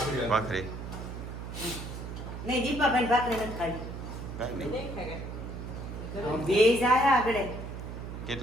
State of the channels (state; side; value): noise; right; hum, 8 dB below the sound